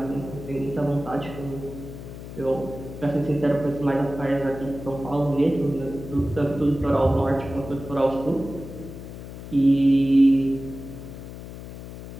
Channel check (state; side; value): noise; left; hum, 12 dB below the sound